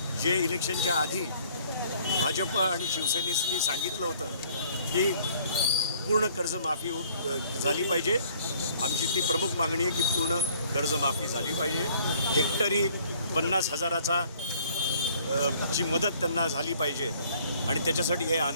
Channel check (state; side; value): inverted; both; correlation -0.59